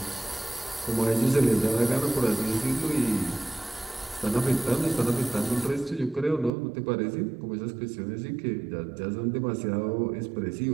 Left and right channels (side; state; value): left; drops out; at 6.5 s